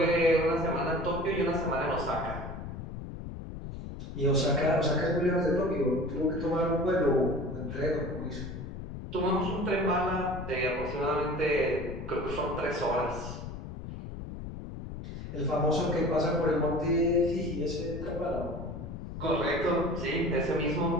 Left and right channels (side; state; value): left; noise; rumble, 9 dB below the sound